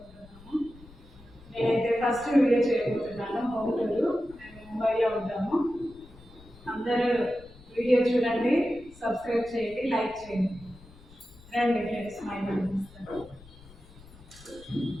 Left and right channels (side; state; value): left; noise; rumble, 22 dB below the sound